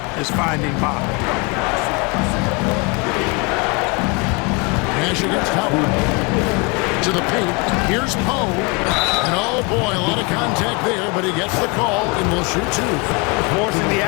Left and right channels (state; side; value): quieter; right; 29.5 dB